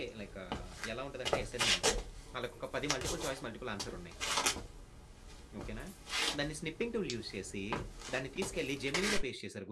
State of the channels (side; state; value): both; identical; correlation 1.00